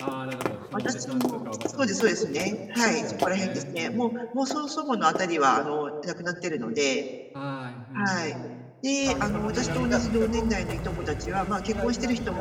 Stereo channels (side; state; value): both; identical; correlation 1.00